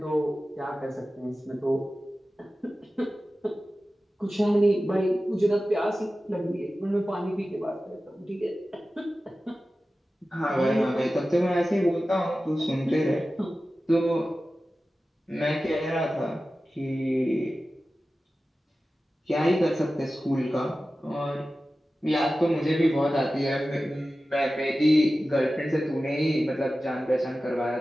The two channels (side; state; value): both; normal; correlation 0.95